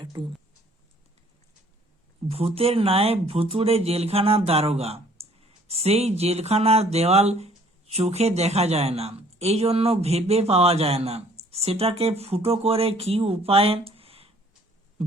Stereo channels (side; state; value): both; normal; correlation 0.57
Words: ভূতের ন্যায় ভুতুড়ে জেলখানার দারোগা, সেই জেলখানার দেওয়াল চোখে দেখা যায় না, এই জন্য ভেবে পাওয়া যায় না সেটাকে ফুটো করে কি উপায়ে